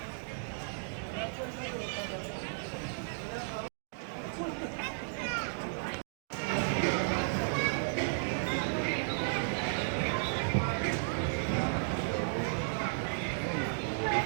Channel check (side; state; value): left; silent; digital silence